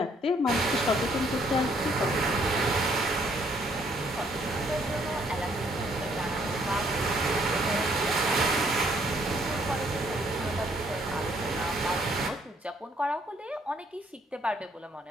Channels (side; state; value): both; normal; correlation 0.66